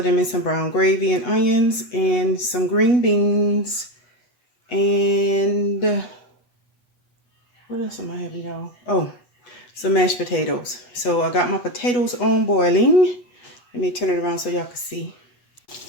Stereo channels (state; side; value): late; right; 8.2 ms